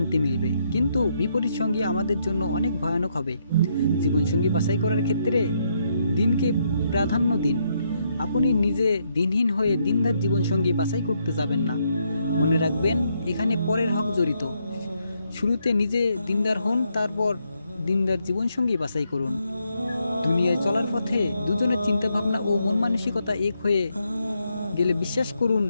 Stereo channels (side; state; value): both; inverted; correlation -0.77